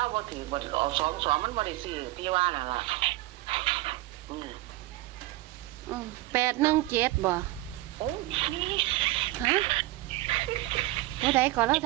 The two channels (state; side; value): quieter; left; 18.1 dB